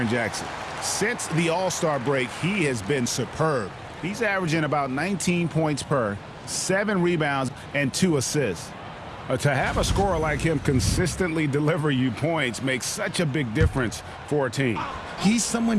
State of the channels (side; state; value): both; identical; correlation 1.00